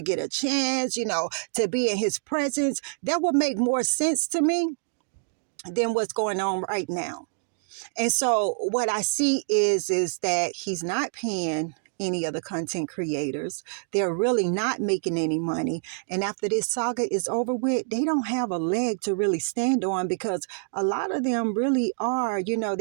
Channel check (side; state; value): left; silent; digital silence